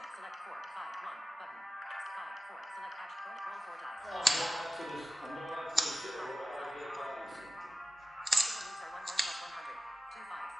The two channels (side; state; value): both; normal; correlation 0.94